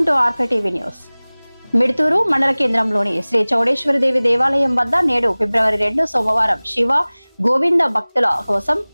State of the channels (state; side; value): inverted; both; correlation -1.00